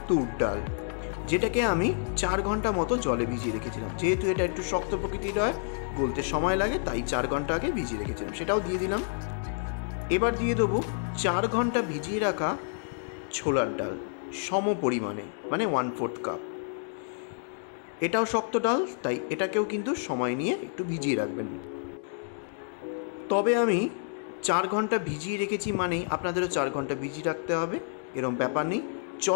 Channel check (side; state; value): right; silent; digital silence